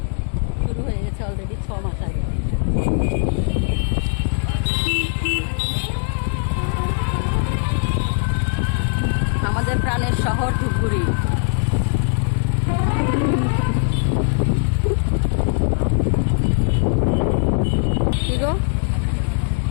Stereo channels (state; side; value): silent; right; 66 dB below the other